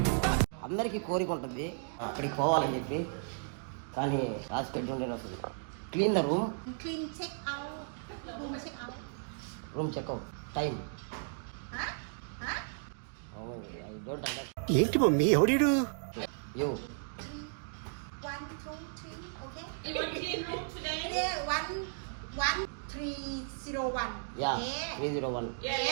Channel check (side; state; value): left; silent; digital silence